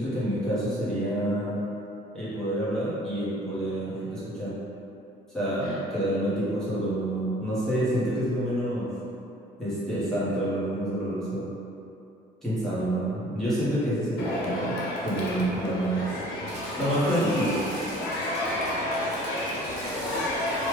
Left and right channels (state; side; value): normal; both; correlation 0.51